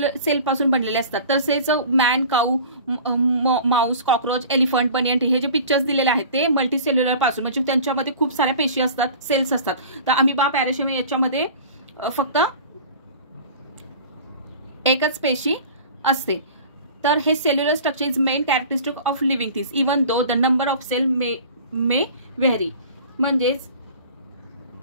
पासून बनलेले असतात. तसेच man, cow, mouse, cockroach, elephant, banyan tree हे जे पिक्चर्स दिलेले आहेत ते मल्टीसेल्युलर पासून म्हणजे त्यांच्यामध्ये खूप साऱ्या पेशी असतात, सेल्स असतात. तर अमिबा, पॅराशियम याच्यामध्ये फक्त एकच पेशी असते. तर हे cellular structure is main characteristic of living things even though the number of cell may vary. म्हणजेच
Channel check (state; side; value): inverted; both; correlation -0.42